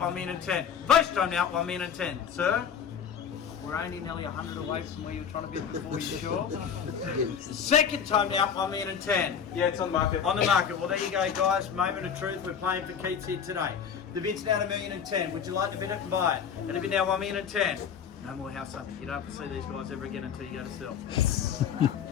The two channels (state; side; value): quieter; right; 7.6 dB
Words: million and 10. First time now, $1 million and 10. Sir? We're only nearly 100 away from where you were trying to bid before, you sure? Second time now, $1 million and 10. Yeah, it's on the market. On the market. Well, there you go, guys. Moment of truth. We're playing for keeps here today. The bid's now $1 million and 10. Would you like to bid it and buy it? And the bid now $1 million and 10. No more house hunting. You don't have to see these guys ever again until you go to sell.